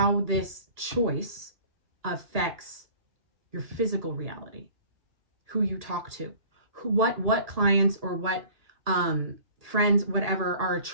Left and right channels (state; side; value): late; left; 1.8 ms